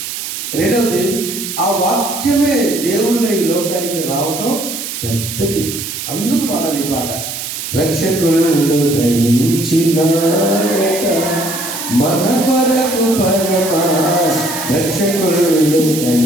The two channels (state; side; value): noise; right; hiss, 6 dB below the sound